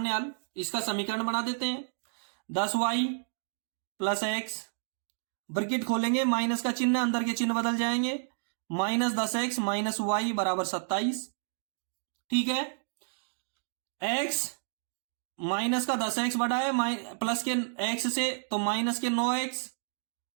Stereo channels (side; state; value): left; silent; digital silence